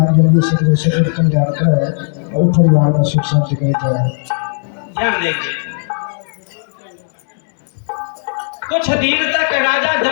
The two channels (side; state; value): right; silent; digital silence